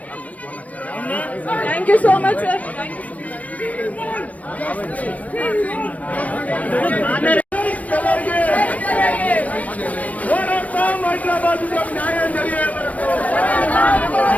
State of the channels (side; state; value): right; late; 0.069 ms